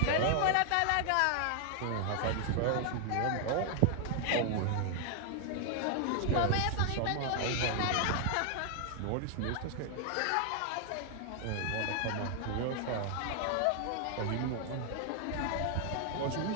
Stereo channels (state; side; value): different; both; correlation 0.00